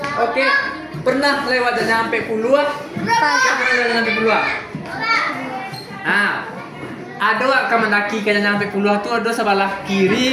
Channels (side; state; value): both; identical; correlation 1.00